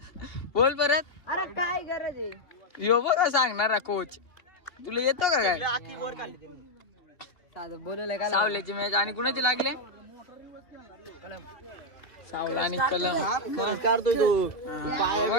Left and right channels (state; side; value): late; right; 2.8 ms